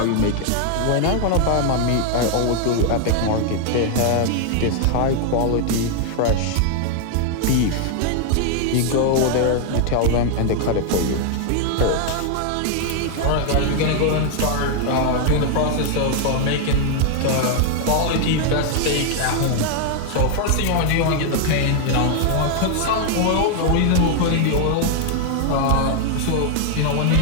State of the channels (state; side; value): different; both; correlation 0.00